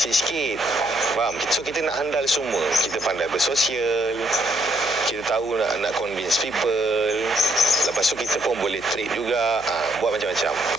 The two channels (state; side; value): noise; right; hum, 21 dB below the sound